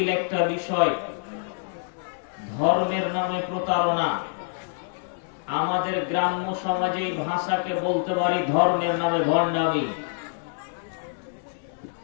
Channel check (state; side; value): silent; right; 61 dB below the other